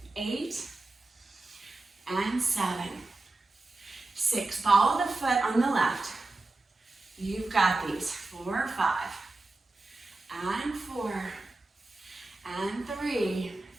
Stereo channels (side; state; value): left; quieter; 3.1 dB